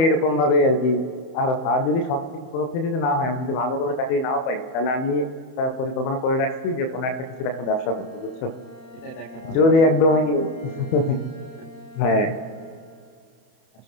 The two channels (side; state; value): right; late; 31 ms